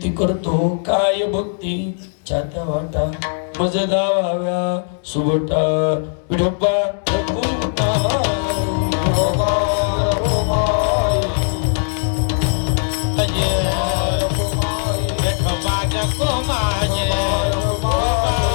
करतो, काय भक्ती छात्या वाटा मज दावाव्या सुबटा विठोबा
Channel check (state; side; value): silent; right; digital silence